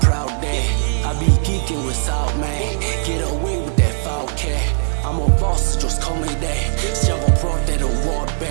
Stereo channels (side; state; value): left; silent; digital silence